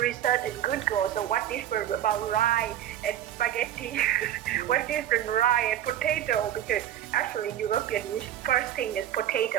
research in Google. So what different about rye and spaghetti? What different rye and potato? Because actually European first thing is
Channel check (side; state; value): left; quieter; 11.5 dB